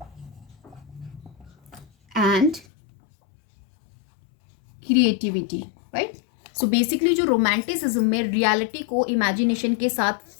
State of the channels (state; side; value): drops out; right; at 2.7 s